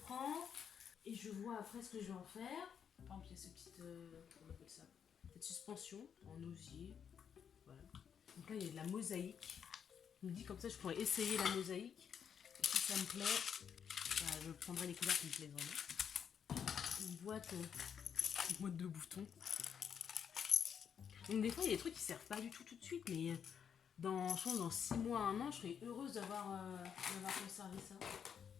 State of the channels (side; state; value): right; quieter; 7.8 dB